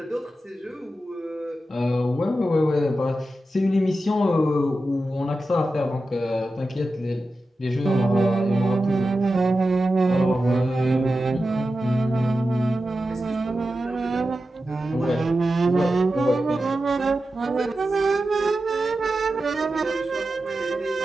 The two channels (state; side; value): normal; both; correlation 0.92